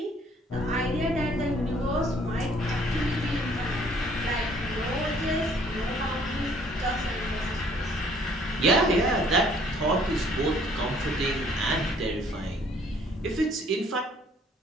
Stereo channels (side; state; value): both; normal; correlation 0.60